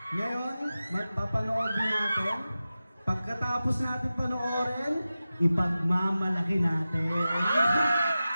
Ngayon, papanoodin natin. Pagkatapos natin panoorin, ipagmamalaki natin.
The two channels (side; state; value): both; inverted; correlation -0.95